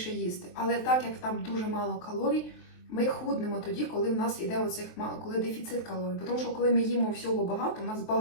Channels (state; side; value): late; right; 23 ms